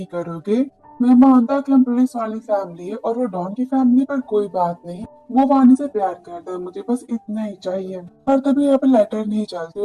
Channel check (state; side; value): identical; both; correlation 1.00